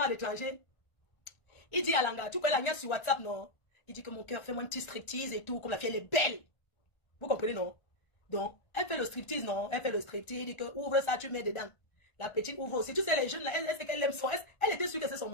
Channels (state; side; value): late; right; 1.3 ms